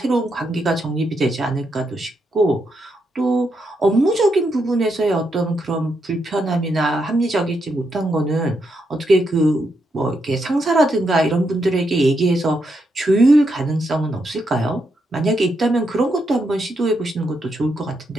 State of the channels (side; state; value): both; normal; correlation 0.81